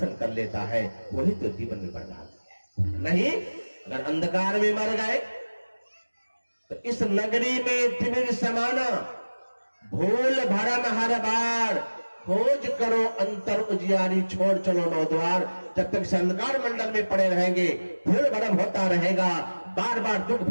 कर लेता है, वही तो जीवन में बड़भागी है। नहीं अगर अंधकार में मर गए तो इस नगरी में तिमिर समाना, भूल भरम हर बार, खोज करो अंतर उजियारी, छोड़ चलो नौ द्वार। जब तक इस अंधकार मंडल में पड़े रहेंगे, भूल भरम होता रहेगा, बार बार दुख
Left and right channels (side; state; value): both; inverted; correlation -1.00